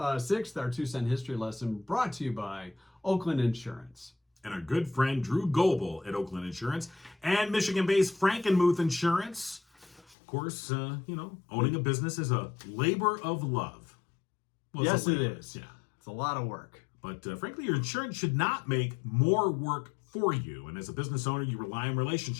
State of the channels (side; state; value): right; drops out; at 10.2 s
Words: our 2-cent history lesson brought to you by Oakland Insurance. And our good friend Drew Goebel at Oakland Insurance and Michigan-based Frankenmuth Insurance. Of course, owning a business is a labor of love. Well, it's Yes, a it labor. is. Yeah. It's a lot of work. But frankly, your insurance should not make more work for you. And as a business owner, you rely on